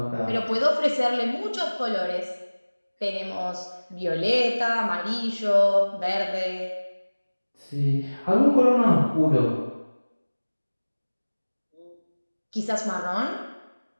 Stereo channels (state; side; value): inverted; both; correlation -1.00